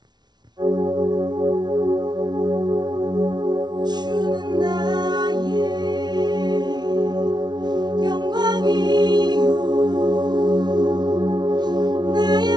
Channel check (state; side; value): late; left; 0.20 ms